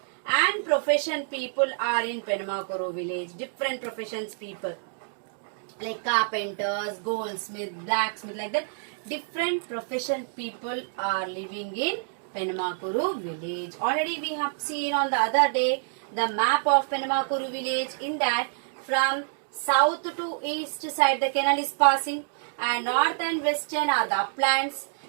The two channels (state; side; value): silent; left; digital silence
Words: and profession people are in Penamakuru village. Different professions people like carpenters, goldsmith, blacksmith, like that. Different profession people are living in Penamakuru village. Already we have seen on the other day the map of Penamakuru village. In that, from south to east side the canal is passing, and north and western are the uplands,